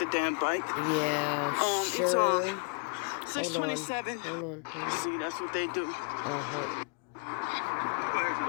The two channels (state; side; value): quieter; right; 37.5 dB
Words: the damn bike. Yeah, sure. Hold on. 6:27. Hold on. See, that's what they do. Uh-huh.